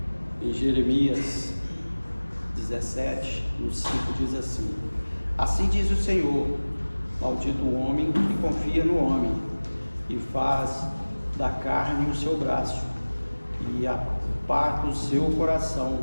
em Jeremias 17, no 5 diz assim: assim diz o Senhor, maldito o homem que confia no homem e faz da carne o seu braço, e aparta o seu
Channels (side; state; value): both; inverted; correlation -1.00